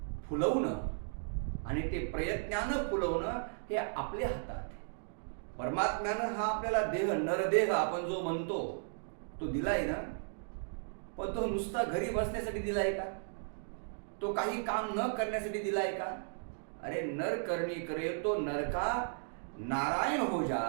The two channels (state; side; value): silent; left; digital silence